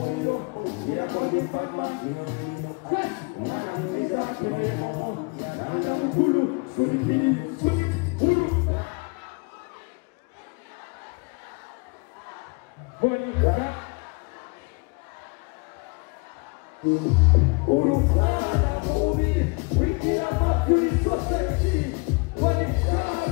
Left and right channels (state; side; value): quieter; right; 29.7 dB